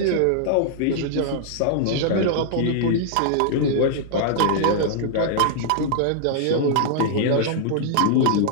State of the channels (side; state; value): both; different; correlation -0.01